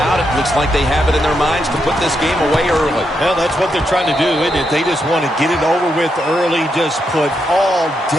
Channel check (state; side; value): normal; both; correlation 0.82